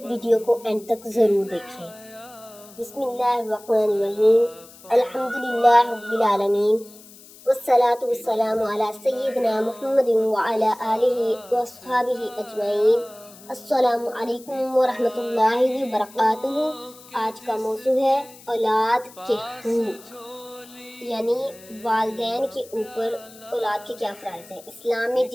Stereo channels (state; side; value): noise; left; hiss, 21 dB below the sound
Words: ویڈیو کو اینڈ تک ضرور دیکھیں۔ بسم اللہ الرحمن الرحیم، الحمدللہ رب العالمین، والصلاة والسلام علی سیدنا محمد وعلی آلہ واصحابہ اجمعین۔ السلام علیکم ورحمۃ اللہ وبرکاتہ۔ آج کا موضوع ہے اولاد کے حقوق، یعنی والدین کے اوپر اولاد کے کیا فرائض ہیں۔ اسلام میں